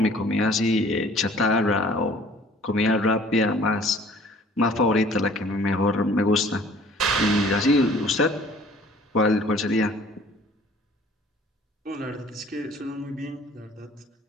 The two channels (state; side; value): normal; both; correlation 0.53